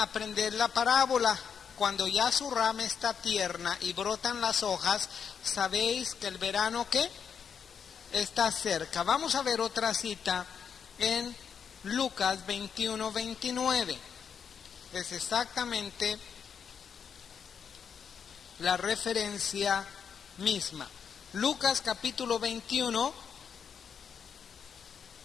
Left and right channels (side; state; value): right; quieter; 7.1 dB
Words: la parábola. Cuando ya su rama está tierna y brotan las hojas, sabéis que el verano, ¿qué? Está cerca. Vamos a ver otra cita en Lucas 21:29. Es exactamente la referencia misma. Lucas capítulo 21,